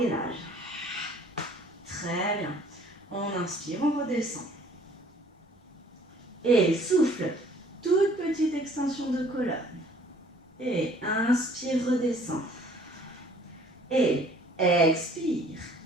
Très bien. On inspire, on redescend. Et souffle, toute petite extension de colonne. Et inspire, redescend. Et expire,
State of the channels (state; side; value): normal; both; correlation 0.56